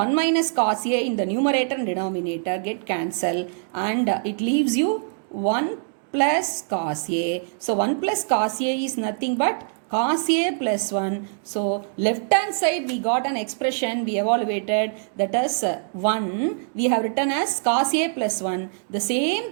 minus cos A in the numerator and denominator get cancelled, and it leaves you 1 plus cos A. So 1 plus cos A is nothing but cos A plus 1. So left hand side we got an expression we evaluated, that is 1. We have written as cos A plus 1. The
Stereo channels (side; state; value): left; silent; digital silence